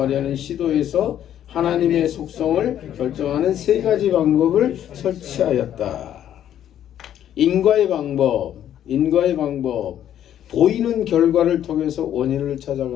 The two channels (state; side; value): quieter; right; 10.8 dB